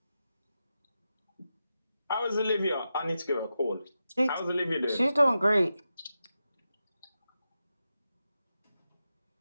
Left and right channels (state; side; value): inverted; both; correlation -0.90